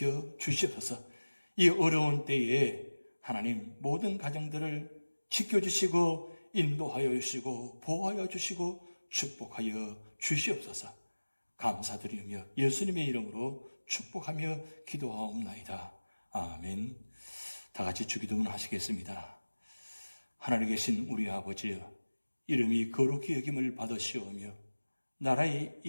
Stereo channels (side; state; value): both; inverted; correlation -1.00